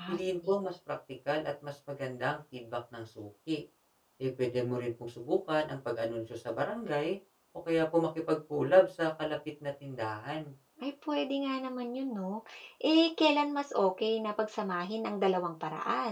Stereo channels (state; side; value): identical; both; correlation 1.00